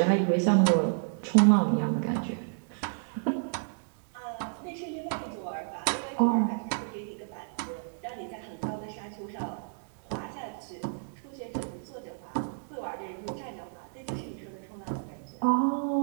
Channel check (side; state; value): left; silent; digital silence